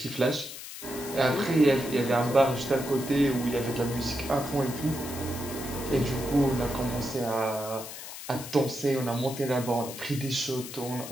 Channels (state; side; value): noise; left; hiss, 11 dB below the sound